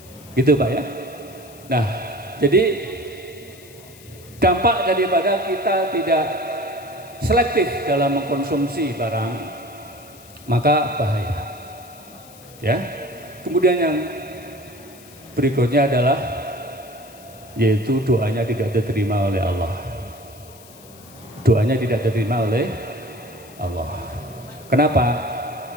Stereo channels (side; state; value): left; noise; hiss, 22 dB below the sound